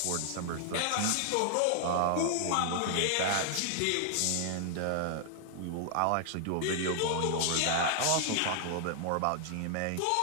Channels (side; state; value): both; different; correlation -0.01